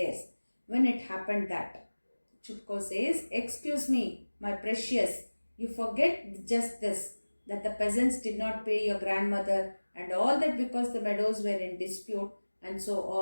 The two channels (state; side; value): inverted; both; correlation -1.00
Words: When it happened that, Chupko says, excuse me, my precious, you forget just this, that the peasants did not pay your grandmother and all that because the meadows were in dispute and so